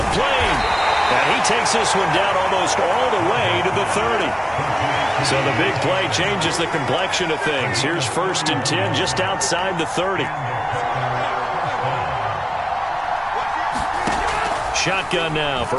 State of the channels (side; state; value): both; identical; correlation 1.00